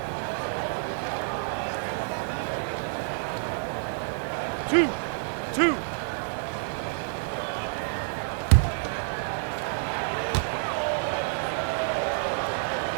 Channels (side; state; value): left; silent; 59 dB below the other